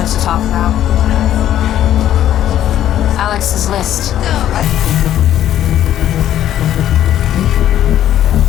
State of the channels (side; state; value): right; quieter; 11.6 dB